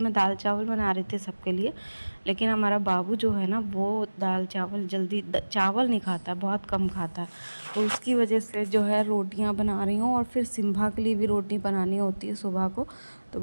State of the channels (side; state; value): both; inverted; correlation -1.00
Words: दाल चावल बना रही थी सबके लिए, लेकिन हमारा बाबू जो है ना, वो दाल चावल जल्दी चावल नहीं खाता, बहुत कम खाता है। तो उसकी वजह से जो है रोटियाँ बना रही हूँ, और फिर सिम्भा के लिए भी रोटी बनानी होती है सुबह को, तो